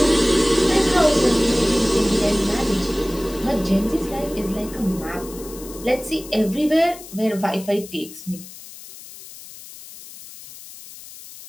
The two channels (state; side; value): noise; left; hiss, 16 dB below the sound